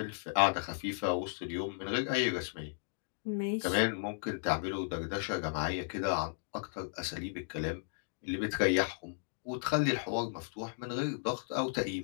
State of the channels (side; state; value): right; silent; digital silence